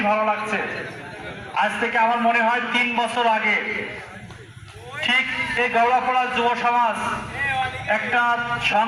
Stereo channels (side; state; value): both; identical; correlation 1.00